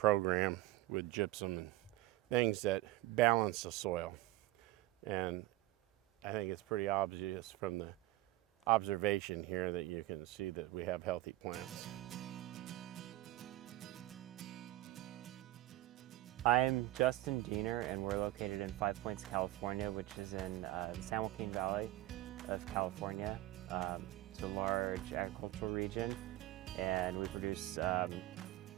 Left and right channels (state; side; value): quieter; left; 16.6 dB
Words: with gypsum and things that balance the soil. And I think it's pretty obvious from the observation here that you can see that we have healthy plants. I'm Justin Diener, and we're located in 5 Points, California, which is in the San Joaquin Valley of California. It's a large agricultural region, and we produce a